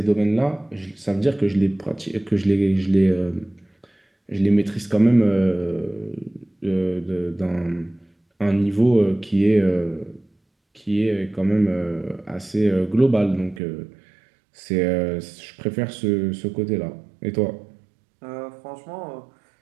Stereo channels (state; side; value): drops out; left; at 13.6 s